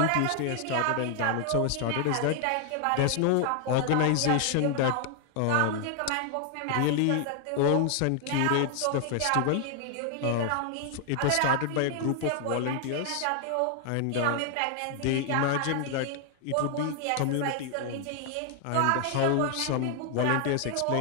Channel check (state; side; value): different; both; correlation 0.00